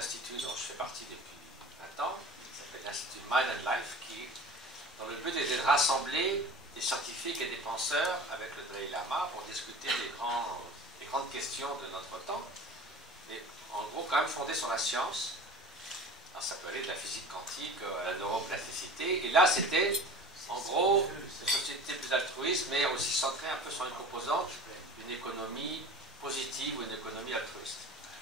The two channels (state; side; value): normal; both; correlation 0.38